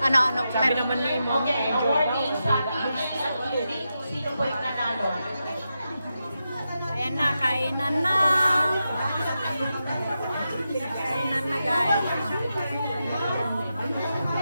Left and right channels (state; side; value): inverted; both; correlation -0.88